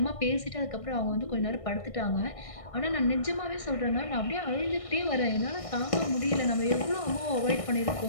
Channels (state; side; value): late; right; 1.6 ms